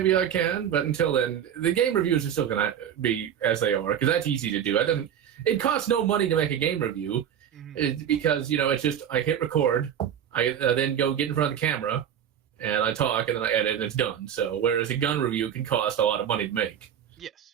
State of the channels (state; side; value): quieter; left; 9.3 dB